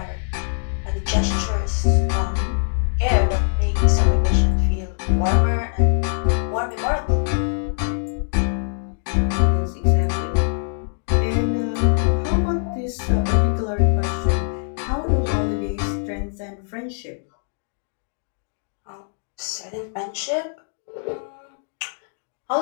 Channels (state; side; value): silent; right; digital silence